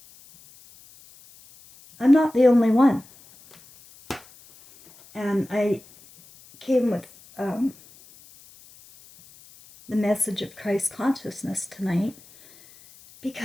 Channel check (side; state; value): left; noise; hiss, 25 dB below the sound